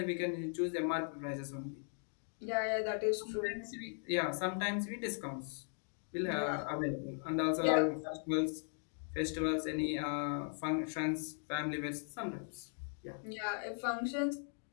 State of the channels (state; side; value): silent; right; 52 dB below the other